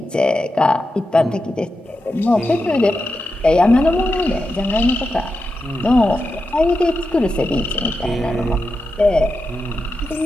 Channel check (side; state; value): both; normal; correlation 0.89